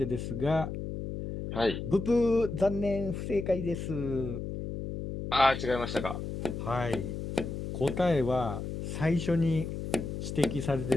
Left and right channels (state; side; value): noise; left; hum, 6 dB below the sound